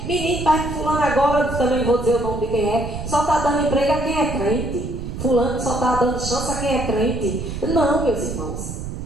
Menino, pai, fulano agora, também vou dizer o nome de quem é, só está dando emprego a quem é crente. Fulano só está dando chance a quem é crente. Não, meus irmãos.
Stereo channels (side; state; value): right; noise; rumble, 7 dB below the sound